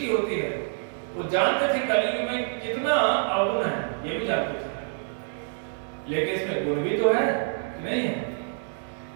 होती है। वो जानते थे कलयुग में कितना अवगुण है, ये भी जानते थे, लेकिन इसमें गुण भी तो है कि नहीं है।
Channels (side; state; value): left; silent; digital silence